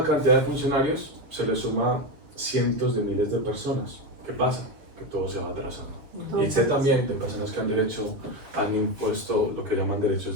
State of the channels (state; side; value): late; left; 6.9 ms